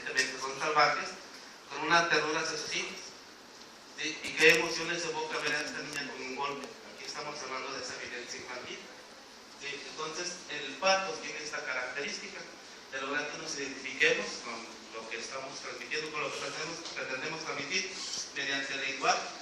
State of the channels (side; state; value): both; identical; correlation 1.00